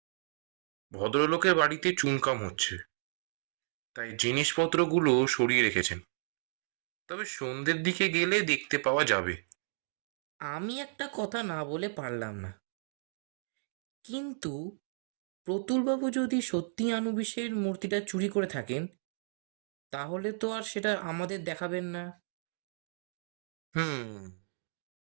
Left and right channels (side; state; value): left; silent; digital silence